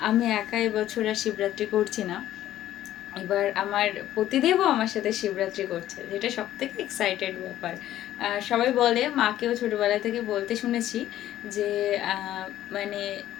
আমি একা এবছর আর শিবরাত্রি করছি না, এবার আমার পতিদেবও আমার সাথে শিবরাত্রি করছে, যেটা সব থেকে এক্সাইটেড ব্যাপার। সবাই বলে, মাকেও ছোটোবেলা থেকে বলতে শুনেছি যে মানে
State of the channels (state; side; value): quieter; right; 13.0 dB